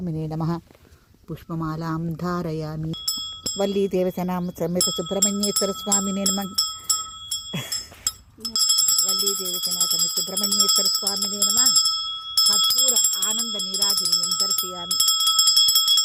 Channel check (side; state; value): both; identical; correlation 1.00